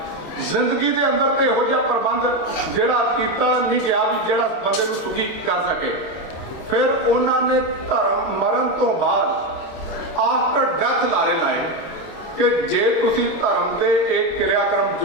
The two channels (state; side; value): late; right; 26 ms